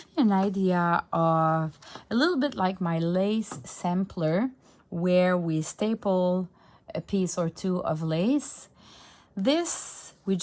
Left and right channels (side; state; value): both; identical; correlation 1.00